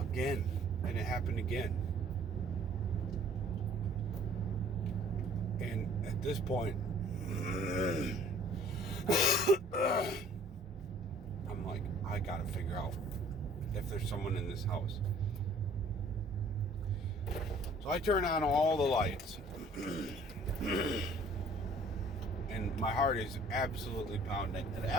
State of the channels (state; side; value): normal; both; correlation 0.54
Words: and it happened again. And at this point, I'm like, I gotta figure out if there's someone in this house. So I turn on all the lights. And my heart is absolutely pounding. And